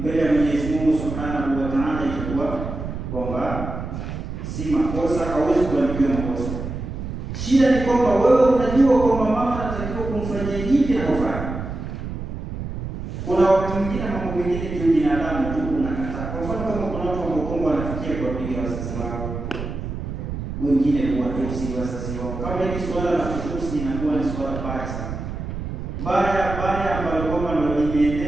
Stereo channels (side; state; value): right; noise; rumble, 6 dB below the sound